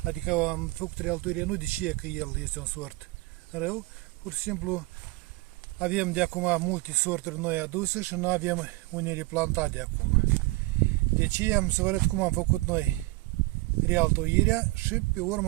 Adică am făcut realtoirea nu de ce că el este un sort rău, pur și simplu avem de acum multe sorturi noi aduse și nu avem unele plantate de acum. Deci am să vă arăt cum am făcut noi realtoirea și pe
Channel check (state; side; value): quieter; left; 22.4 dB